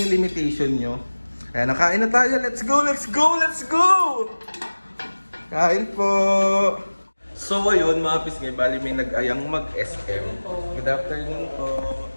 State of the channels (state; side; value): inverted; both; correlation -1.00